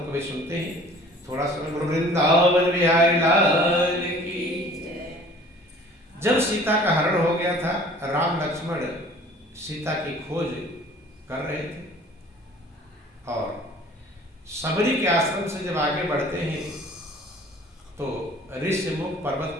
कभी सुनते हैं? थोड़ा सा वृंदावन बिहारी लाल की। जब सीता का हरण हो गया था, राम लक्ष्मण सीता की खोज कर रहे थे, और सबरी के आश्रम से जब आगे बढ़ते हैं तो ऋष्यमुख पर्वत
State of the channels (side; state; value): both; normal; correlation 0.49